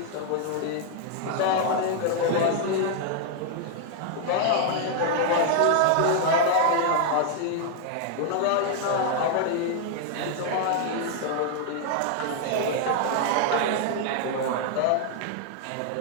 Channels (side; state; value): both; different; correlation 0.00